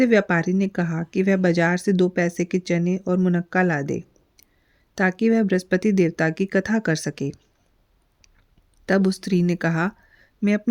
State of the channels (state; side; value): identical; both; correlation 1.00